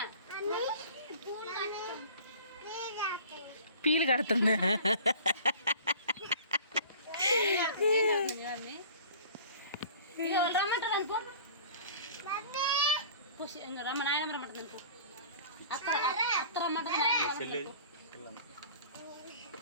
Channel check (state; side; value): inverted; both; correlation -0.44